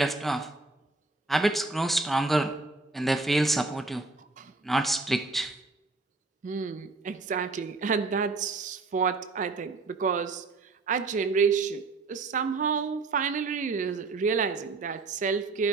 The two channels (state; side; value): quieter; left; 3.7 dB